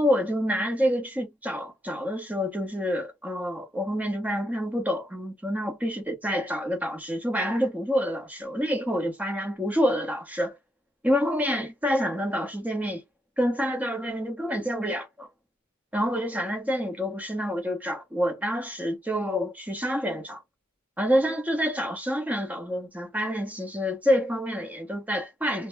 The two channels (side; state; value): both; normal; correlation 0.81